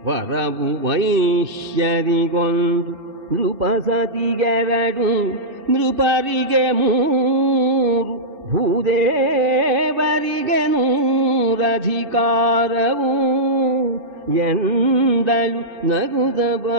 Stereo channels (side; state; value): left; late; 2.6 ms